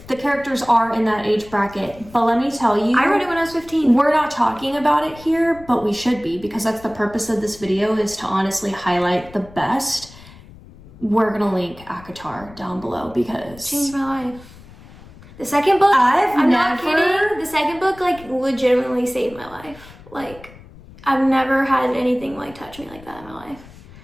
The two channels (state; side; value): noise; left; rumble, 21 dB below the sound